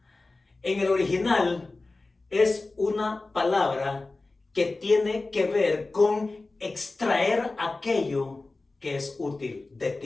En el original es una palabra que tiene que ver con extraer aquello que es útil de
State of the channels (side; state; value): right; quieter; 3.4 dB